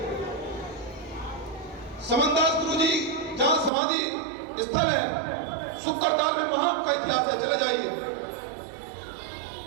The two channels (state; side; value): drops out; left; at 3.7 s